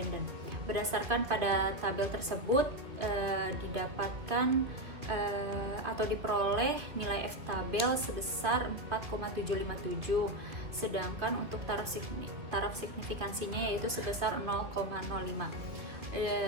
Berdasarkan pada tabel tersebut didapatkan atau diperoleh nilai F tabel sebesar 4,757, sedangkan untuk taraf signifikansinya yaitu sebesar 0,05.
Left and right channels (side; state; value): left; late; 2.2 ms